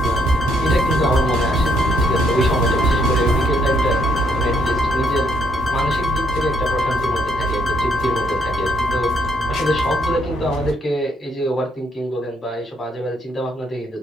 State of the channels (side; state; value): both; normal; correlation 0.71